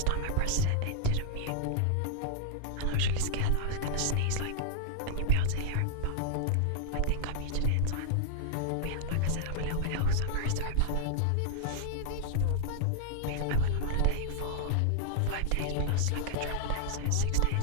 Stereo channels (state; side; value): different; both; correlation 0.00